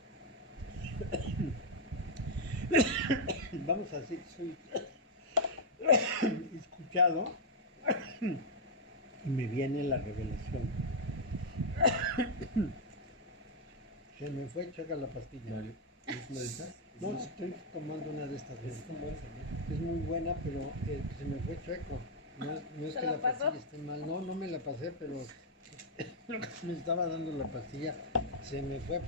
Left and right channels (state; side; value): normal; both; correlation -0.02